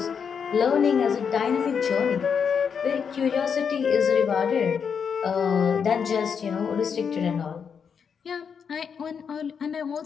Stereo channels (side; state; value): right; quieter; 6.7 dB